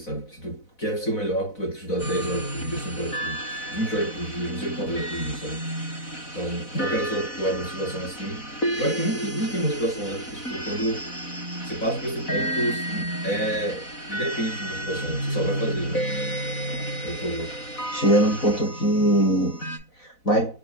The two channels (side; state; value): right; late; 4.0 ms